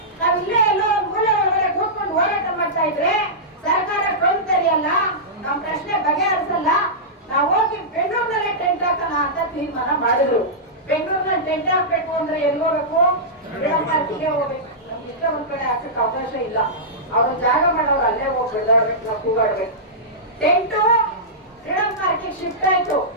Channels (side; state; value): both; normal; correlation -0.14